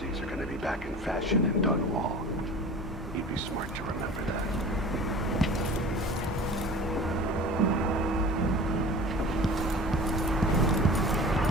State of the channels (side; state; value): both; normal; correlation 0.39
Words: are gonna be back in fashion in Dunwall. You'd be smart to remember that.